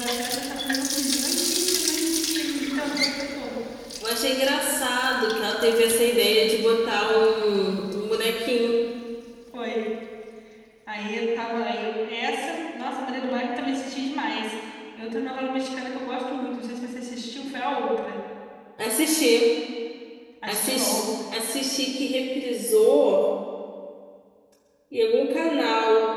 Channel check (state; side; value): identical; both; correlation 1.00